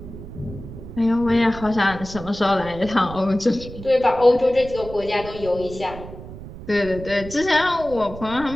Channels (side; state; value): right; noise; rumble, 13 dB below the sound